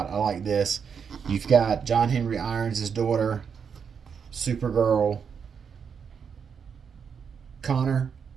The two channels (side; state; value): left; quieter; 6.7 dB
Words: I like this. You've got John Henry Irons' daughter, Supergirl, Connor,